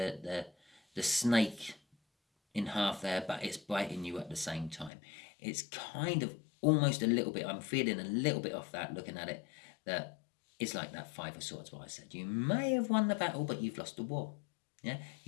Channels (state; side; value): drops out; right; at 4.9 s